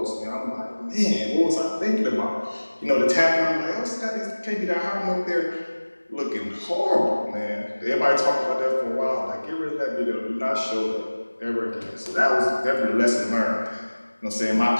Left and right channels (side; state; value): both; inverted; correlation -1.00